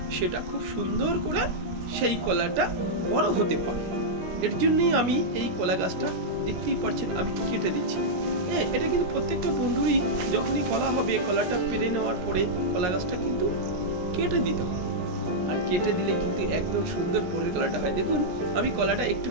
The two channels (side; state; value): left; late; 17 ms